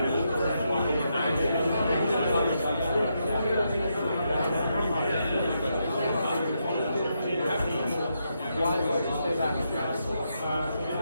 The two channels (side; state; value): both; inverted; correlation -0.81